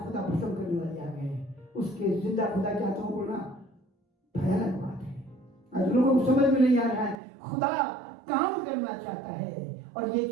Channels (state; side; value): drops out; left; at 7.2 s